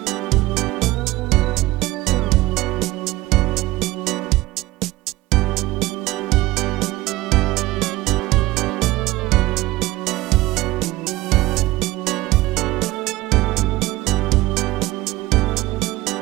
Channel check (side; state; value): left; quieter; 18.5 dB